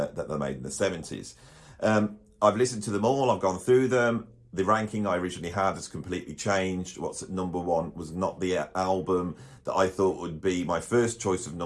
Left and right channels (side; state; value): both; identical; correlation 1.00